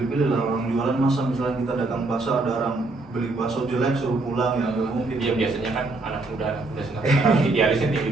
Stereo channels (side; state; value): left; quieter; 3.2 dB